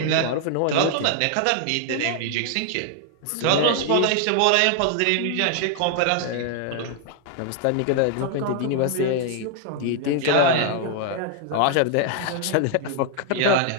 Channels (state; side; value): different; both; correlation 0.00